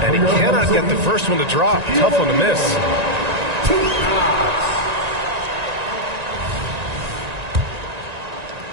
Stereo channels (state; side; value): late; left; 1.9 ms